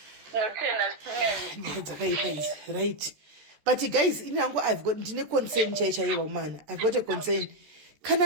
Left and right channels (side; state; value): left; late; 14 ms